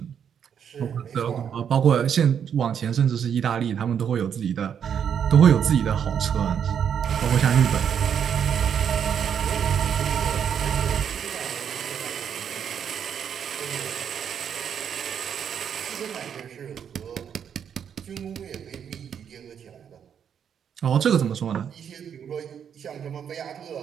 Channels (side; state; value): left; quieter; 8.1 dB